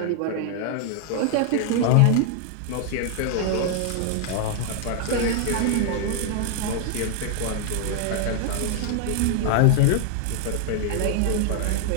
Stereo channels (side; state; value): both; different; correlation 0.00